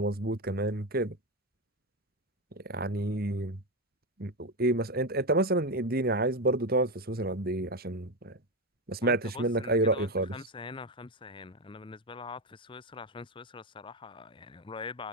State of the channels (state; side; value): normal; both; correlation 0.12